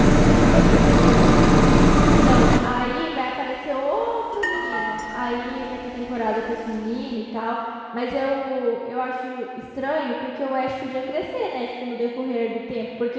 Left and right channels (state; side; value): identical; both; correlation 1.00